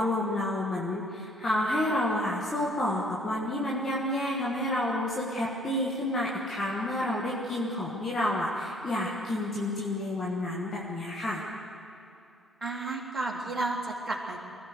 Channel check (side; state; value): both; normal; correlation 0.60